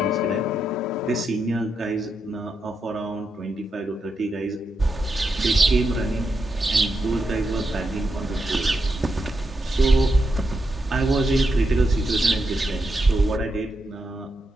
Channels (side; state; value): both; normal; correlation 0.85